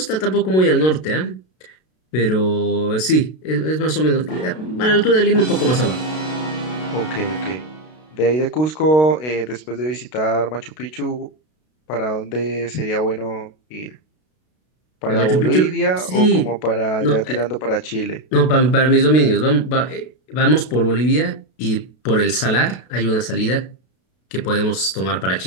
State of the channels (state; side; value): late; right; 32 ms